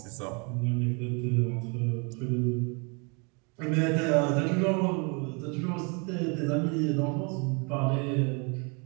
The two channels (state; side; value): quieter; left; 33.4 dB